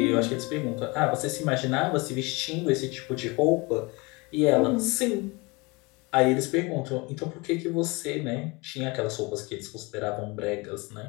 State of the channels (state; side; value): quieter; right; 26.3 dB